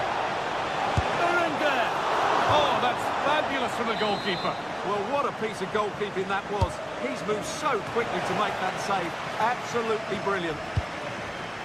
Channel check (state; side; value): identical; both; correlation 1.00